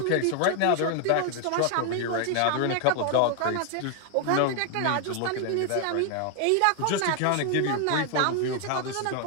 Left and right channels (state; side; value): different; both; correlation 0.00